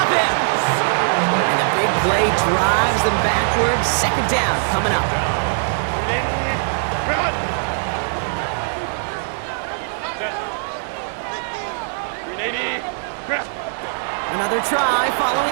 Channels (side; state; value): left; silent; digital silence